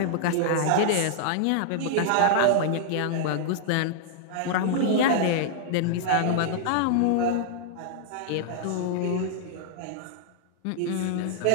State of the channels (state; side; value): different; both; correlation -0.01